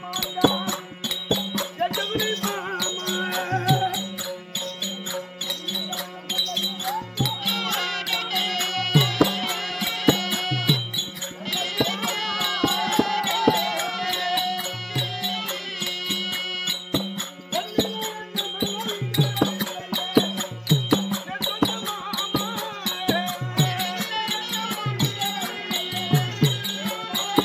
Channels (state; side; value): identical; both; correlation 1.00